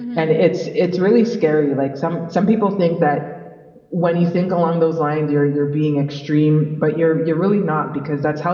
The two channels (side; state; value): both; identical; correlation 1.00